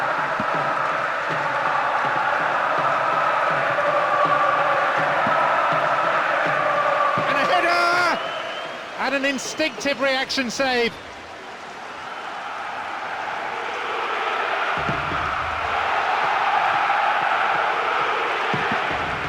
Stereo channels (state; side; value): identical; both; correlation 1.00